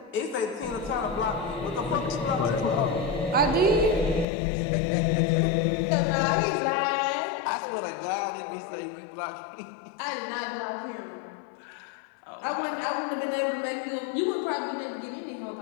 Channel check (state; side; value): drops out; right; at 4.2 s